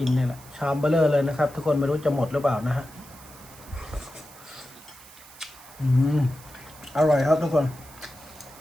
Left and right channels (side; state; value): right; noise; hiss, 20 dB below the sound